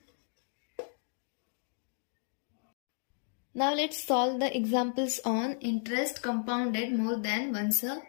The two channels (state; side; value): silent; right; 55 dB below the other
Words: Now let's solve the examples on interest compounded more than once a